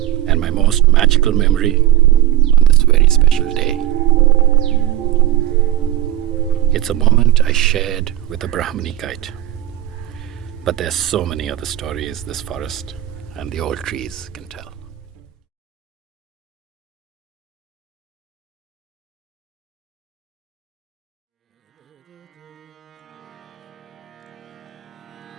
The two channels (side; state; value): left; quieter; 13.5 dB